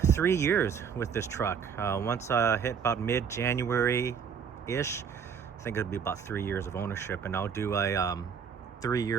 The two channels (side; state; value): left; quieter; 6.9 dB